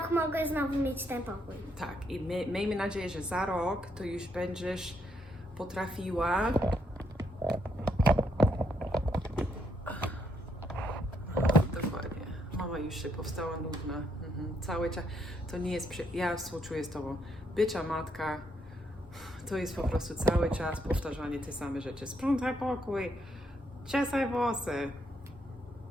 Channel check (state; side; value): normal; both; correlation 0.75